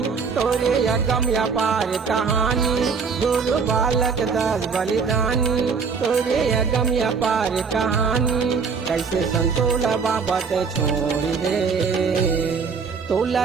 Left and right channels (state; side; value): quieter; left; 5.5 dB